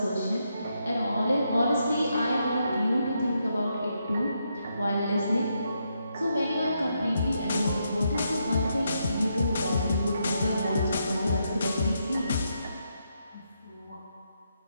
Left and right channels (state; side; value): inverted; both; correlation -0.80